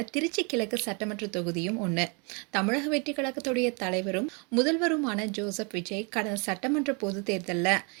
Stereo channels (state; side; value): quieter; left; 33.8 dB